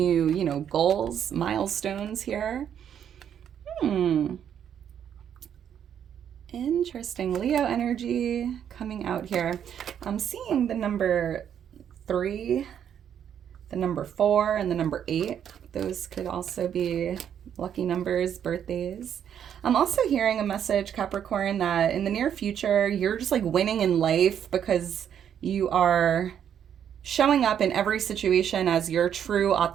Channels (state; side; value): quieter; left; 9.0 dB